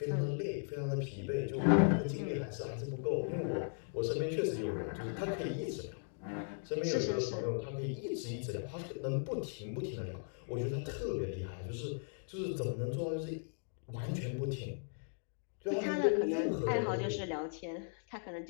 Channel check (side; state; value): right; silent; digital silence